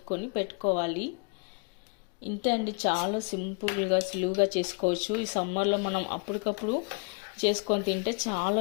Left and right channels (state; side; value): quieter; right; 34.2 dB